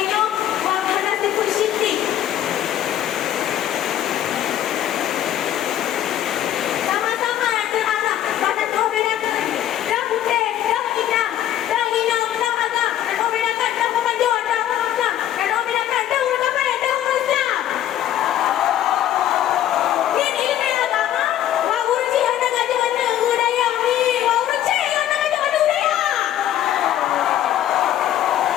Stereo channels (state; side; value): quieter; right; 11.8 dB